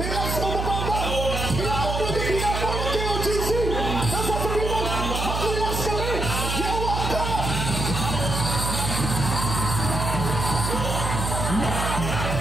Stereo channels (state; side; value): noise; right; hum, 2 dB below the sound